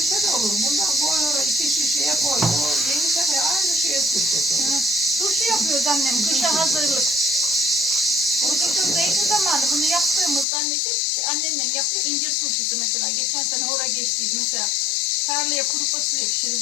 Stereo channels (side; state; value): right; drops out; at 10.5 s